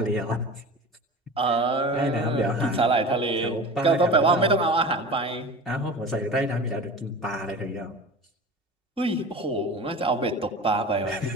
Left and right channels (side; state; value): both; normal; correlation 0.34